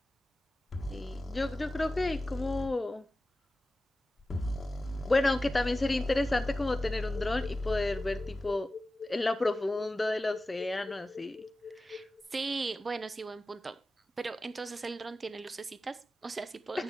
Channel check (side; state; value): both; normal; correlation 0.95